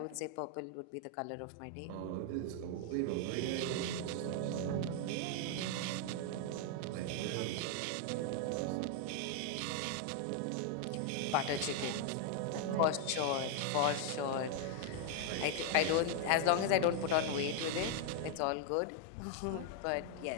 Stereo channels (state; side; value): different; both; correlation 0.00